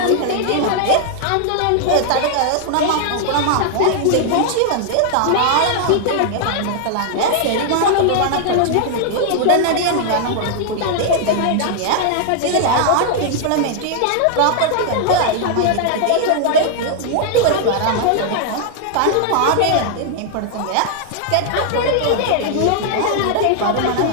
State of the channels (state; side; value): different; both; correlation 0.00